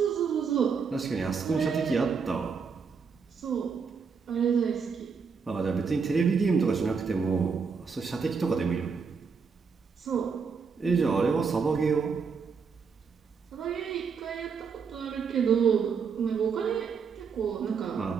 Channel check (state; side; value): quieter; left; 5.7 dB